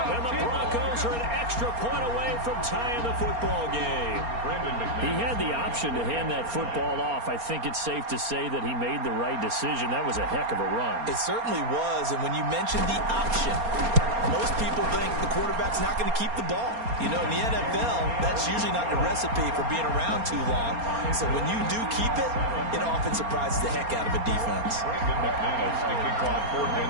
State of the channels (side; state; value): left; late; 4.3 ms